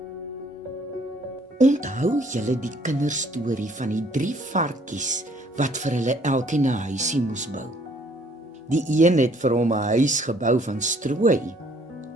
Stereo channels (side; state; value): both; normal; correlation 0.62